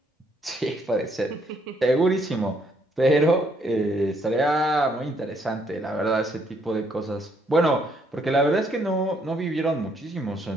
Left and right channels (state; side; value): normal; both; correlation 0.70